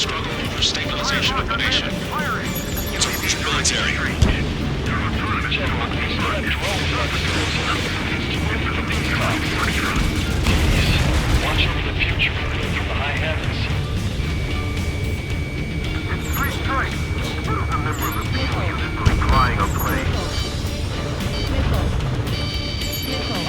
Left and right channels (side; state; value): both; identical; correlation 1.00